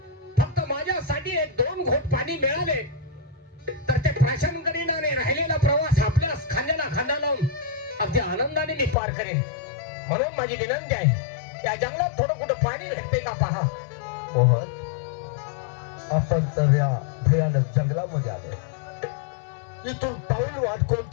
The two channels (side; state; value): right; drops out; at 9.0 s